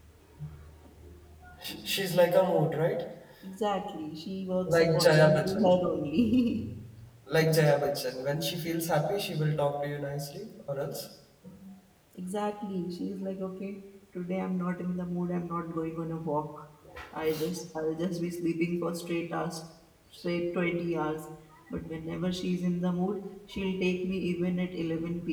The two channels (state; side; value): identical; both; correlation 1.00